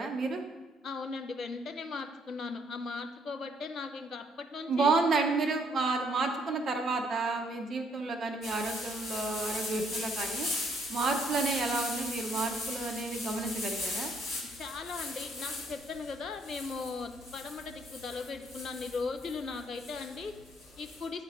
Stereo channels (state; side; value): normal; both; correlation 0.68